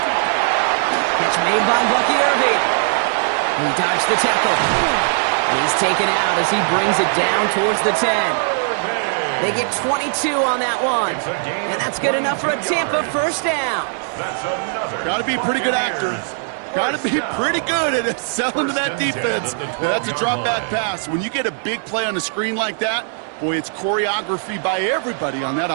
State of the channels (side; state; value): left; silent; 66 dB below the other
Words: Catch made by Bucky Irving. He dodged the tackle. He's taken out as he brings it down towards the 10. They get 22 on that one. And that's good enough for a Tampa first down. Got to be a pretty good actor. Got to be pretty good at selling to that defense. That's a drop back pass. When you get a big play on the screen like that, boy, it's choreography by everybody on that